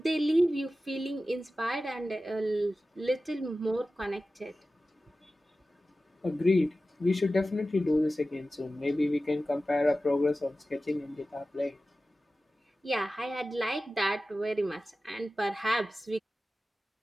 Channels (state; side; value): normal; both; correlation 0.95